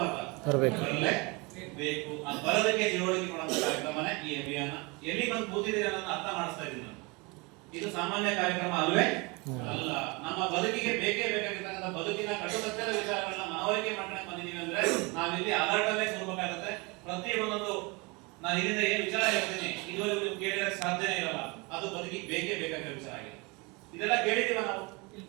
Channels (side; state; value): left; quieter; 27.5 dB